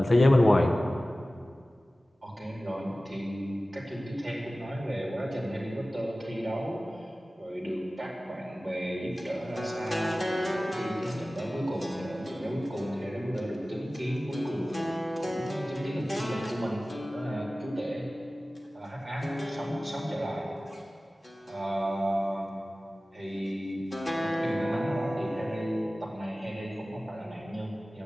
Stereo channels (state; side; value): normal; both; correlation 0.97